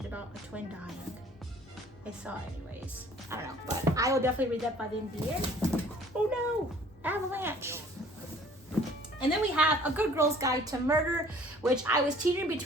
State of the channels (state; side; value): normal; both; correlation 0.53